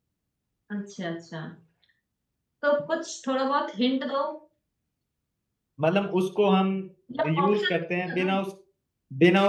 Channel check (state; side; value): identical; both; correlation 1.00